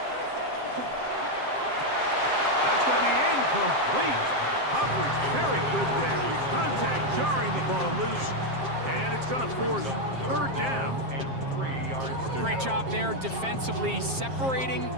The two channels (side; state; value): left; late; 7.5 ms